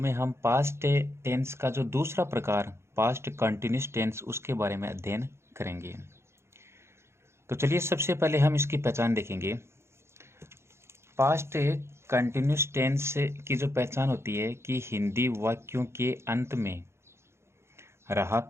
हम पास्ट टेंस का जो दूसरा प्रकार पास्ट कंटिन्यूस टेंस उसके बारे में अध्ययन करेंगे। तो चलिए सबसे पहले हम इसकी पहचान देखेंगे। पास्ट कंटिन्यूस टेंस की जो पहचान होती है कि हिंदी वाक्यों के अंत में रहा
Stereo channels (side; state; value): left; late; 0.13 ms